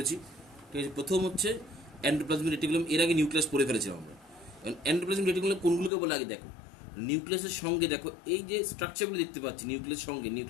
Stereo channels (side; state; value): right; drops out; at 5.9 s